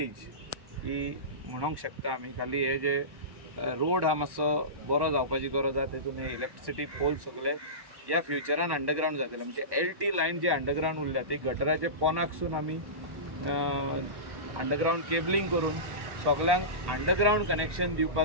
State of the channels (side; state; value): left; late; 1.1 ms